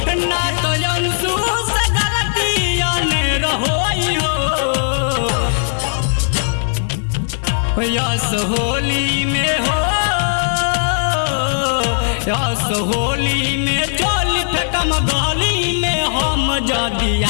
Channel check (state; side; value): silent; right; 60 dB below the other